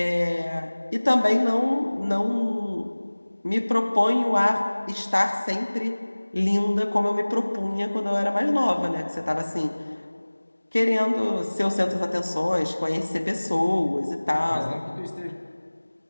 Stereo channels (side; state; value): both; inverted; correlation -1.00